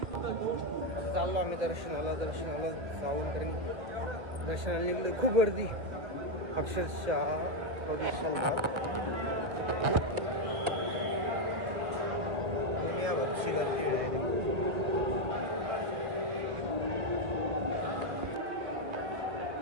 आता चाललो आम्ही दर्शनाला जाऊन, कारण दर्शनाला निघलो. खूप गर्दी अक्षरशः दुनियाभरची गर्दी आहे.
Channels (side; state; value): left; late; 1.3 ms